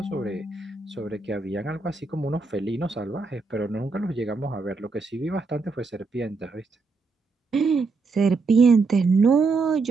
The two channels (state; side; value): quieter; left; 4.1 dB